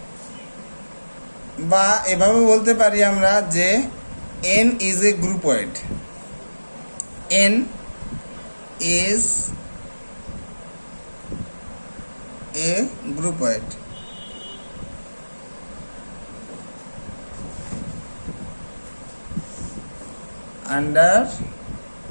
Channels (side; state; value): both; inverted; correlation -1.00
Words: বা এভাবে বলতে পারি আমরা যে n is a groupoid. N is a groupoid. Under